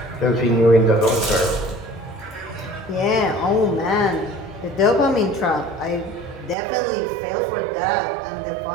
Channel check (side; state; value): left; drops out; at 6.6 s